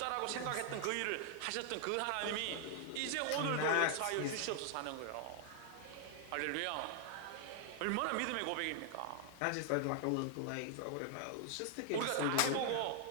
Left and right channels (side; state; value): both; different; correlation 0.00